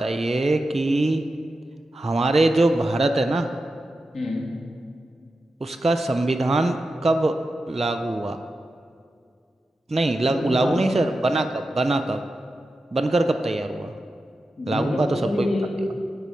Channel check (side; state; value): both; normal; correlation 0.91